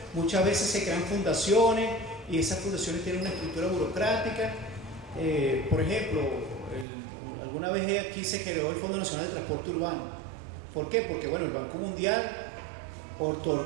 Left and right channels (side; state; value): left; drops out; at 6.9 s